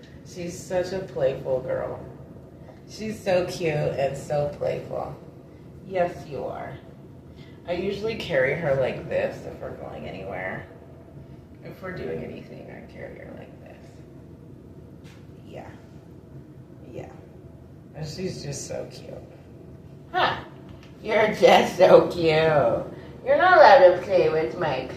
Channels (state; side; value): identical; both; correlation 1.00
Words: She's such a playful girl. She's so cute and so playful. Yes, you are. I usually carry her like this if we're going anywhere. If we're doing anything, I carry her like this. Yeah. Yeah. And she's just so cute. Huh. You're just so cute. You're not allowed to play with my